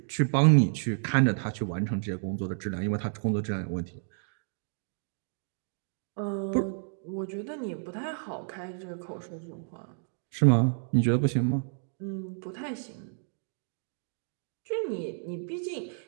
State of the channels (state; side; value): silent; left; digital silence